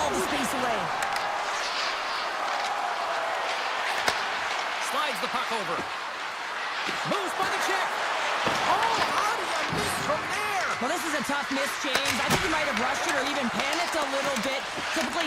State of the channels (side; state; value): both; identical; correlation 1.00